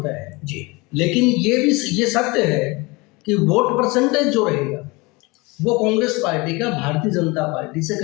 है जी, लेकिन ये सत्य है कि वोट परसेंटेज जो रहेगा वो कांग्रेस पार्टी का भारतीय जनता पार्टी से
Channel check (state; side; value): quieter; right; 25.1 dB